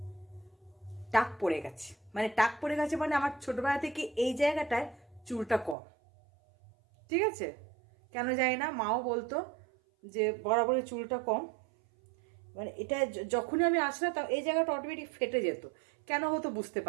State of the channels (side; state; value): left; drops out; at 5.8 s